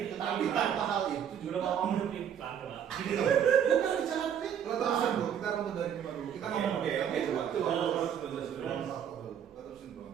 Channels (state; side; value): quieter; left; 8.8 dB